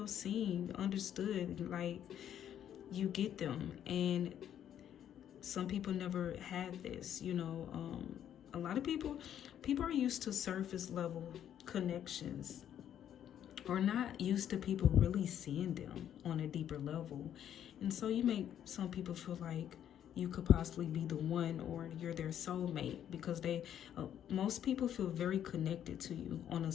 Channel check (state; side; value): quieter; right; 10.1 dB